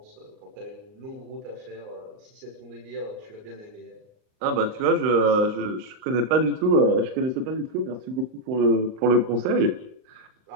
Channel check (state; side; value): late; left; 39 ms